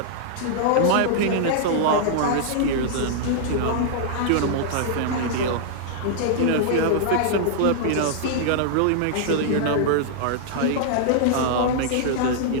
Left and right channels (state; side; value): different; both; correlation -0.01